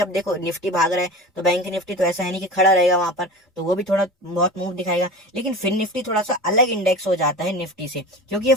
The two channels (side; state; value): both; normal; correlation 0.33